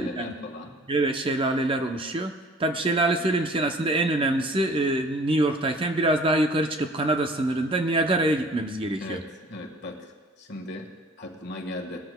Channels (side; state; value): both; normal; correlation 0.50